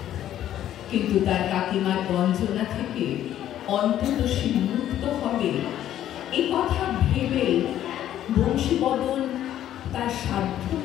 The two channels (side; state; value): right; quieter; 11.7 dB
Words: কিন্তু তার কাকিমার বঞ্চনা থেকে অন্তত সে মুক্ত হবে এ কথা ভেবে বংশীবদন তার